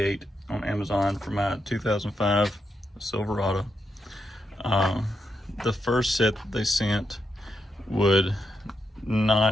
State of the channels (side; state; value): both; normal; correlation 0.84